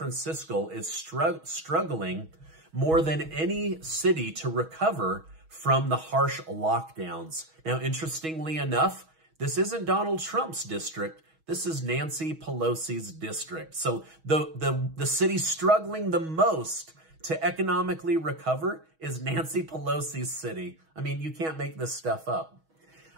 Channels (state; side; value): late; left; 6.2 ms